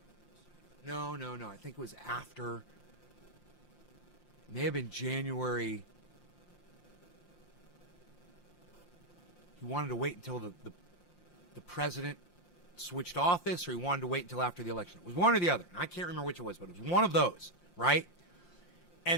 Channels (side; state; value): right; late; 5.7 ms